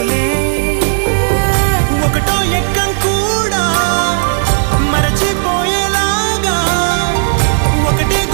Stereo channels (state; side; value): silent; left; digital silence